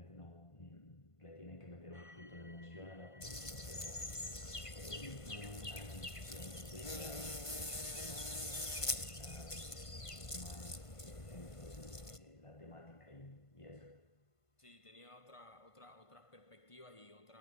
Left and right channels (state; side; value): late; right; 1.5 ms